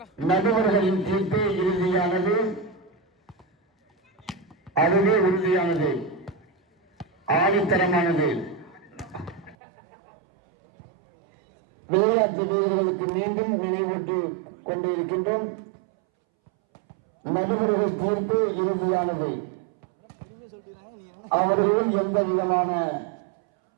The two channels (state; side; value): drops out; left; at 9.6 s